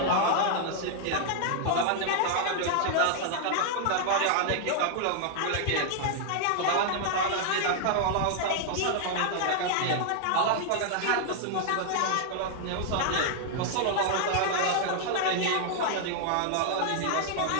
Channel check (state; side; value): different; both; correlation -0.01